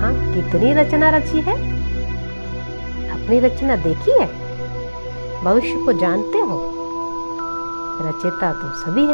कितनी रचना रची है? अपनी रचना देखी है? भविष्य को जानते हो? रचयिता तो सभी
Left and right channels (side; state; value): both; inverted; correlation -1.00